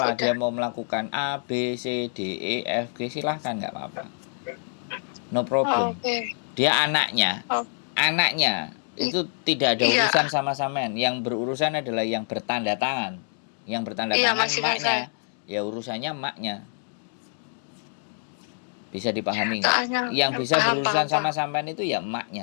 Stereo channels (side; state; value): right; silent; 61 dB below the other